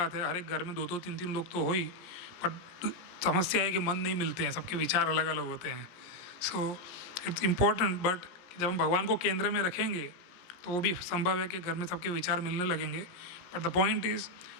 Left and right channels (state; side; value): late; right; 17 ms